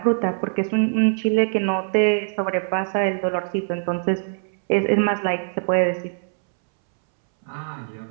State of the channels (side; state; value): left; silent; 64 dB below the other